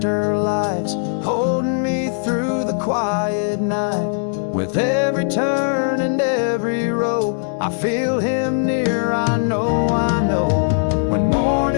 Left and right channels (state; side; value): silent; right; digital silence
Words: lights holding me through the quiet night. With every turn and every row, I feel Him near, I know. When